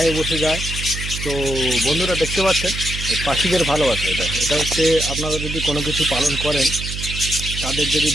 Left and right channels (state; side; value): noise; right; hum, 6 dB below the sound